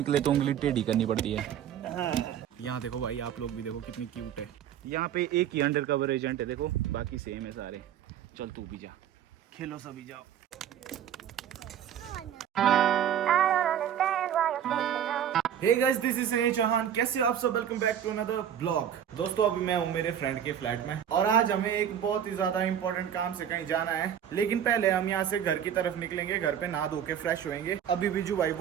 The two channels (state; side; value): quieter; left; 9.5 dB